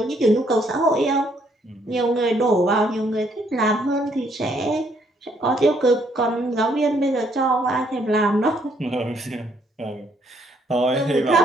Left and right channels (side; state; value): both; normal; correlation 0.69